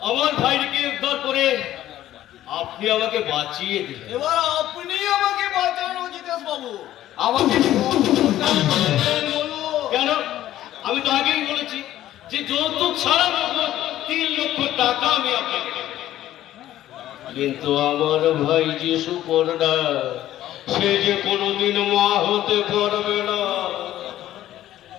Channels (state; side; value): quieter; right; 13.3 dB